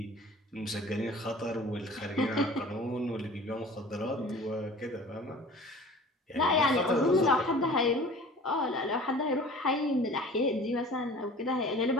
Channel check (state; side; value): normal; both; correlation 0.44